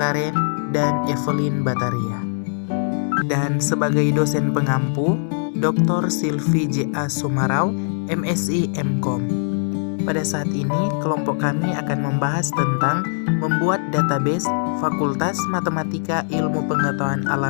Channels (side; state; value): right; silent; digital silence